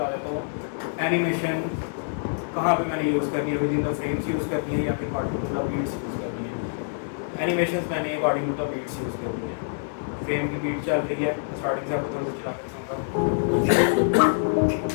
देता हूँ एनिमेशन कहाँ पे मैंने यूज़ करनी है, within the frames use करनी है या फिर according to the beats use करनी है। एनिमेशन मैंने according to the beats use करनी है। फ्रेम की बीट चल रही है, स्टार्टिंग से आपको थोड़ा सा चला कर दिखाऊंगा।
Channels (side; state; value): right; silent; 59 dB below the other